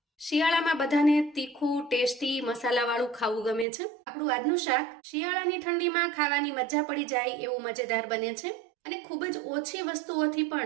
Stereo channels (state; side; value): drops out; left; at 3.7 s